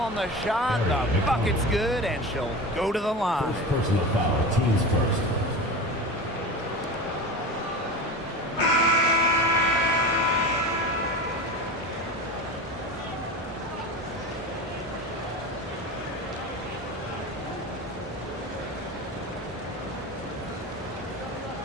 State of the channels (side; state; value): both; normal; correlation 0.29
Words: the shot. The bucket's good, and she'll go to the line. First personal foul. Teams first.